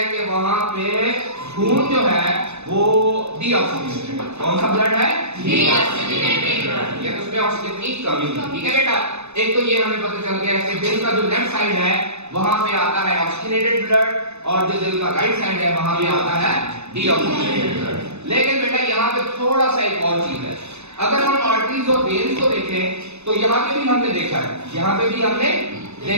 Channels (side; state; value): left; late; 0.81 ms